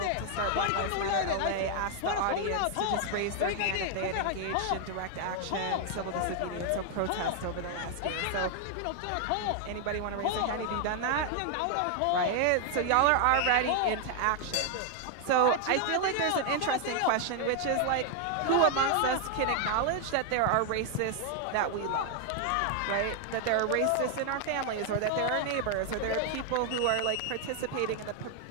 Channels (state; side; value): different; both; correlation 0.00